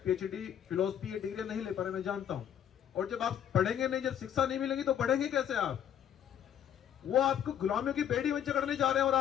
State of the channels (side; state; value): right; quieter; 9.7 dB